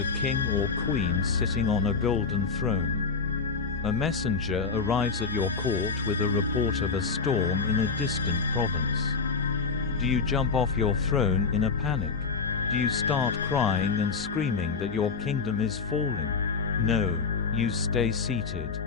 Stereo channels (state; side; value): quieter; right; 4.9 dB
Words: king or queen sitting on a golden throne. A messenger arrives at your court with a report of a storm in a distant province. Do you jump off your throne in a panic? Do you start crying and screaming that your kingdom is falling? No, you stay seated.